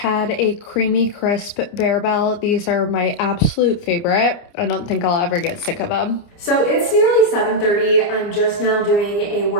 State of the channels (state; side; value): late; right; 29 ms